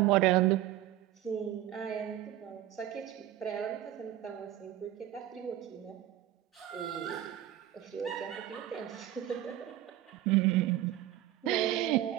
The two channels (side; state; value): left; quieter; 13.2 dB